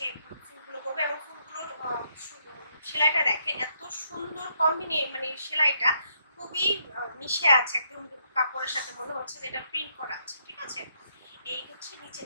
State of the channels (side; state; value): both; inverted; correlation -0.75